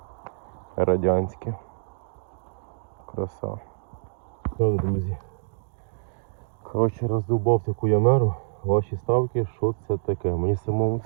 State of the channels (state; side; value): silent; left; digital silence